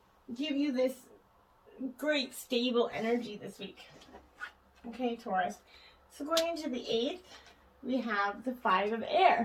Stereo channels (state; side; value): identical; both; correlation 1.00